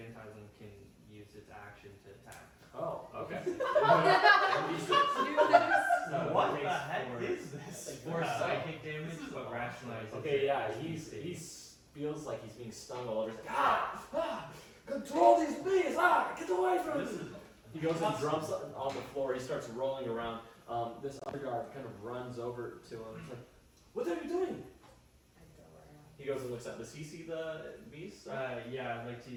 can use its action to attack. Oh, okay. So What it the takes heck four- is this? 4 psychic damage, This is but awesome. rationalizes. Okay, yeah, it as he stinging. feels like he's being stung all over. He's like, control these bees! Get away from This me! is He goes and jumps on the floor. He starts rolling around. This other guard kind of runs over to him. He's like, "What are you doing?" He goes and looks up. Does he see the bees? Yeah, I'd like to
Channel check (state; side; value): identical; both; correlation 1.00